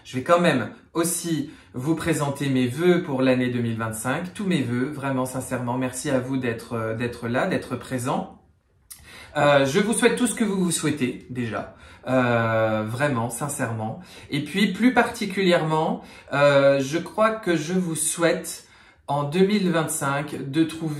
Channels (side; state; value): both; identical; correlation 1.00